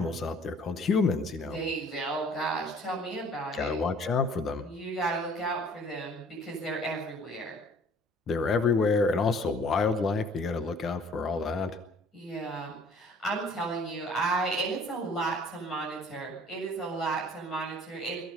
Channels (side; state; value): both; normal; correlation 0.53